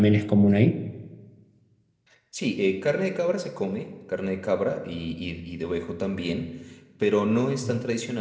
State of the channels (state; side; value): identical; both; correlation 1.00